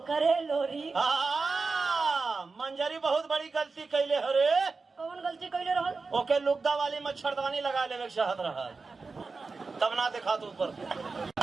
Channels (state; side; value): quieter; left; 4.2 dB